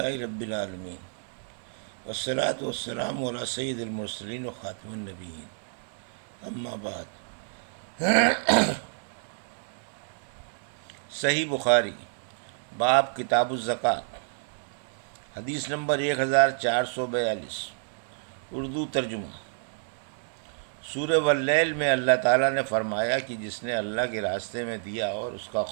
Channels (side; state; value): left; silent; digital silence